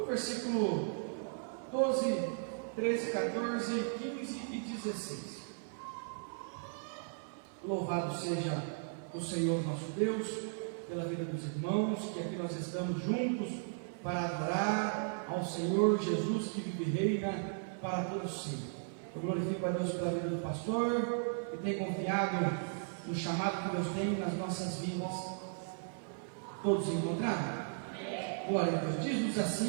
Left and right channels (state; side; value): silent; left; 54 dB below the other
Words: versículo 12, 13, 14, 15 e 16. Louvado seja o Senhor nosso Deus, pela vida dos irmãos, que aqui nós estamos juntos para adorar ao Senhor Jesus, que vive e reina para todos sempre. Eu glorifico a Deus pela vida do pastor, que tem confiado no chamado que Deus tem nas nossas vidas. Todos encontraram? Glória a Deus. Diz-nos